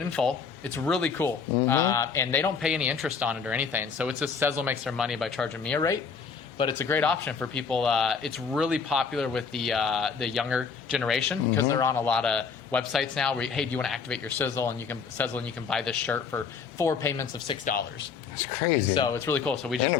in full. It's really cool. And they don't pay any interest on it or anything. So it's just Sezzle makes their money by charging me a rate. But it's a great option for people. It's really popular with the younger generation because they're on a lot of websites now where, hey, do you want to activate your Sezzle and you can buy this shirt for 4 payments of $6. That's crazy. So it's really cool. So we just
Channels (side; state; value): right; quieter; 5.8 dB